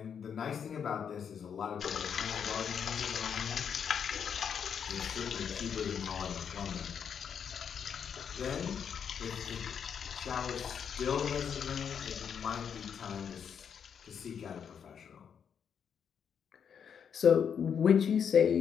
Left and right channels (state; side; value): quieter; right; 7.5 dB